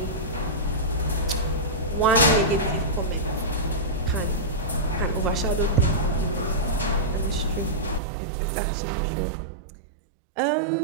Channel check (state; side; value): drops out; left; at 8.0 s